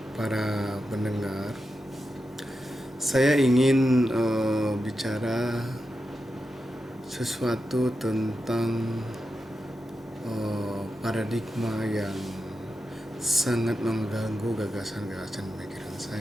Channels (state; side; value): normal; both; correlation 0.90